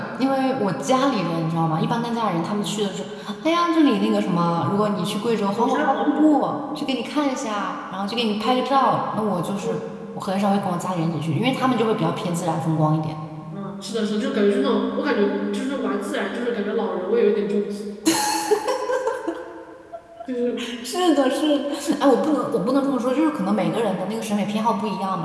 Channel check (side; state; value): both; identical; correlation 1.00